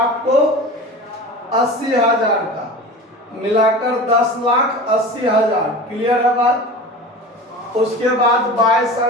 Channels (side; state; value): both; normal; correlation 0.34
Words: 80,000 का, मिलाकर 10,80,000। क्लियर है बात। उसके बाद bye